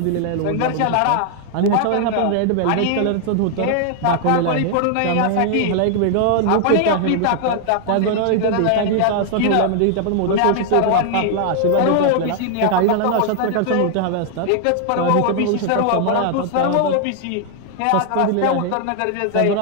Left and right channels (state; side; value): different; both; correlation 0.00